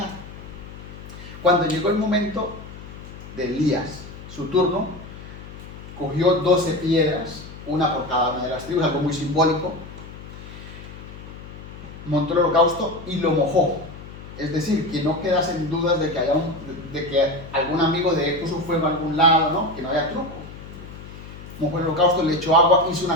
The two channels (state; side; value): noise; left; hum, 14 dB below the sound